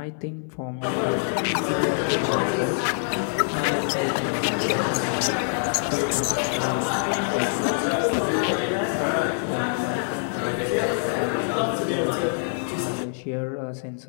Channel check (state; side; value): silent; right; 62 dB below the other